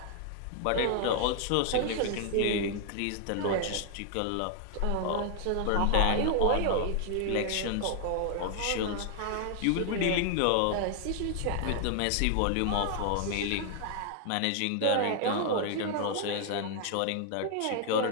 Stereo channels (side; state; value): both; different; correlation 0.00